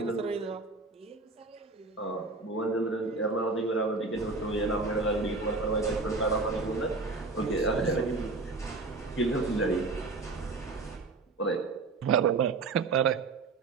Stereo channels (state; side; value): quieter; left; 3.8 dB